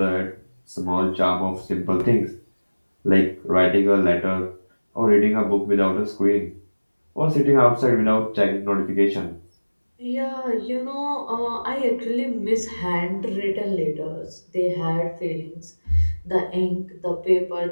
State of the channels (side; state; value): both; inverted; correlation -1.00